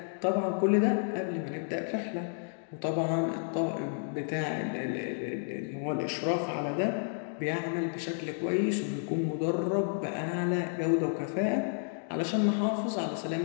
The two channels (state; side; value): silent; right; 57 dB below the other